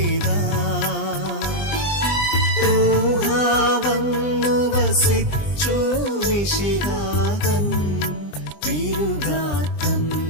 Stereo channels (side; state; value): right; late; 20 ms